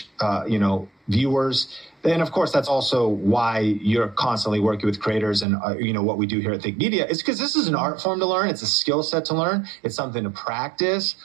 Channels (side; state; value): left; drops out; at 5.5 s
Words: viewers, and of course, that's also why you're constantly working with creators and, what we do here at Think Media is because this is an art form to learn. It's a skill set to learn. It's something to practice.